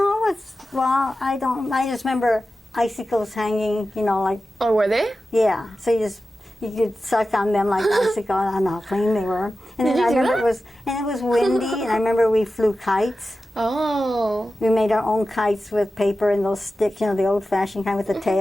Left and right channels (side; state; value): both; normal; correlation 0.93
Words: I just remember icicles hanging, you know, like. Oh, were they? Yeah, so you could suck on them like icicles. I don't know how clean they were. And then I remember it was windy, and I remember we flew kites. Oh. We made our own kites with paper and those sticks, you know, the old-fashioned kind with the